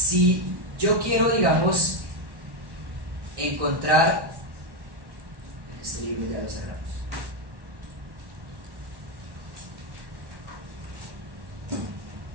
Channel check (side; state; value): left; late; 1.1 ms